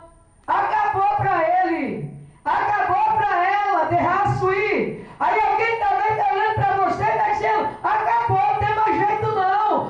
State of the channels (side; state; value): both; identical; correlation 1.00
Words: Acabou para ele. Acabou para ela, derraço ir. Aí alguém também está olhando para você e está dizendo, acabou, não tem mais jeito não.